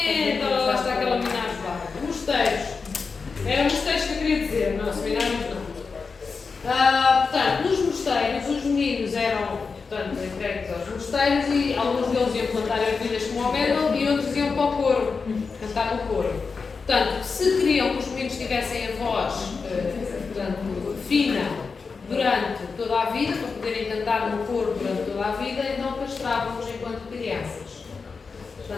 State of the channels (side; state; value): right; quieter; 4.9 dB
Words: Olha lá está aquela minagem lá. Mosteiros. Eram mosteiros que eu queria dizer, não, seminários não. Portanto, nos mosteiros, os meninos eram, portanto, entregues aos mosteiros e alguns deles iam plantar ervilhas como Homero e outros iam para o coro, cantar no coro. Portanto, se queriam que os meninos tivessem a voz, portanto, fina durante toda a vida, para poderem cantar no coro durante toda a vida, então castravam-nos enquanto crianças.